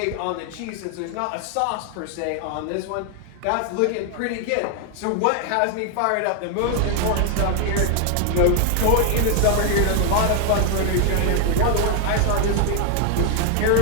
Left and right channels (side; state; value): both; different; correlation 0.00